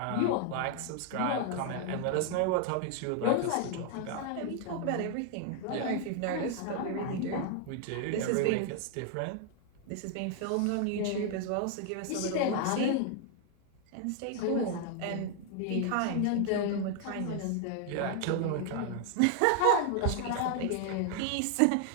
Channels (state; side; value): different; both; correlation 0.00